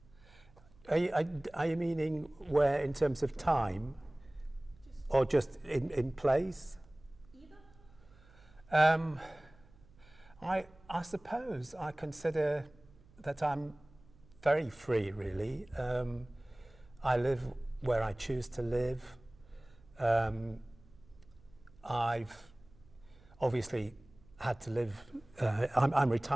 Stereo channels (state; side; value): noise; right; hum, 26 dB below the sound